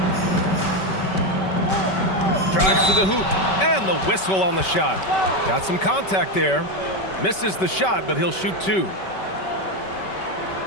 Drives to the hoop. And the whistle on the shot. Got some contact there. Misses the shot, but he'll shoot two.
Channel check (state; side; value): late; right; 5.2 ms